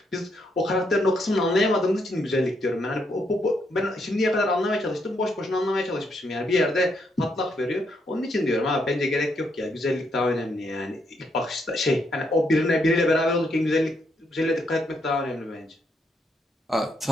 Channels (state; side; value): normal; both; correlation 0.76